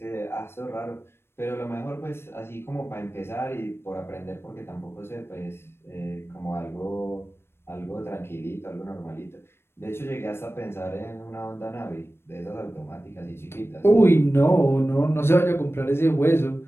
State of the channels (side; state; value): right; late; 0.12 ms